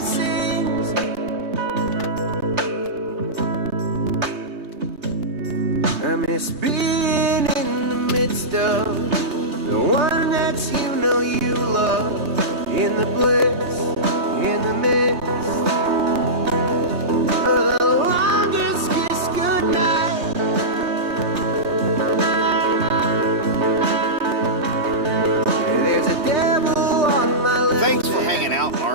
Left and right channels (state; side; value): late; left; 3.3 ms